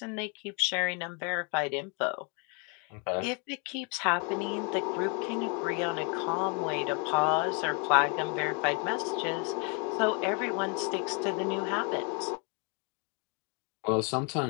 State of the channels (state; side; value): quieter; right; 35.4 dB